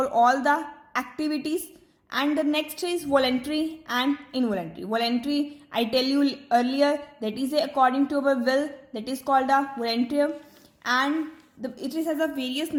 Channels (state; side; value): identical; both; correlation 1.00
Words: all the activities. And the next is voluntary and involuntary. Voluntary, I tell you earlier, that is according to our will, that is called a voluntary. And it has a various